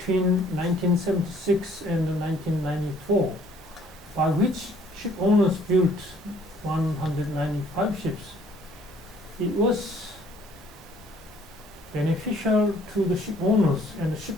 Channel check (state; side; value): normal; both; correlation 0.60